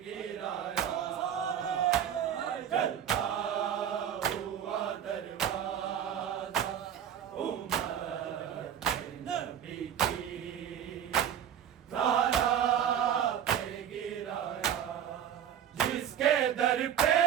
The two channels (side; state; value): left; quieter; 9.5 dB